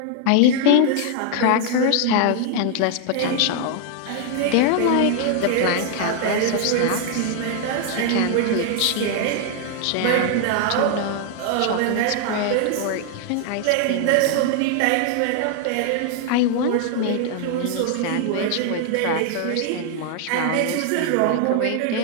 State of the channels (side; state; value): both; different; correlation 0.00